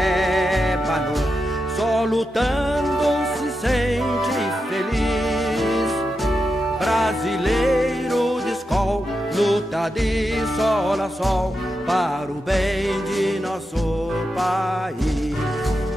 só lutando se sente feliz. Brasileiro de escol, luta de sol a sol para o bem de nosso país.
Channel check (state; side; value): normal; both; correlation 0.88